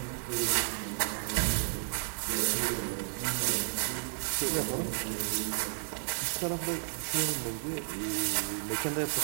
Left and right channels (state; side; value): silent; left; digital silence